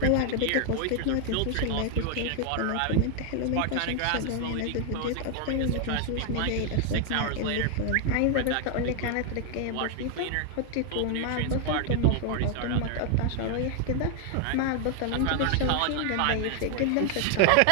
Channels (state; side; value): different; both; correlation 0.00